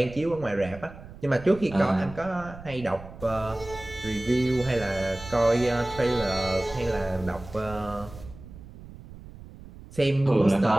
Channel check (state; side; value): noise; right; rumble, 16 dB below the sound